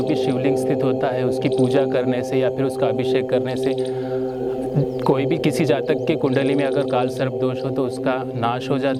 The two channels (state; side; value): identical; both; correlation 1.00